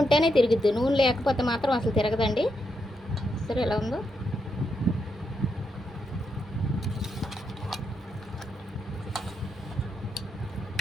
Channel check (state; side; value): normal; both; correlation 0.82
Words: ఉంటేనే తిరుగుద్ది, నూనె లేకపోతే మాత్రం అసలు తిరగదండి. సరే ఎలా ఉందో?